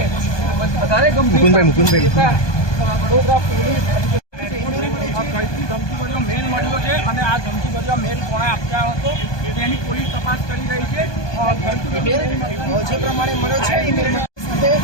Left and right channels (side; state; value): right; late; 1.2 ms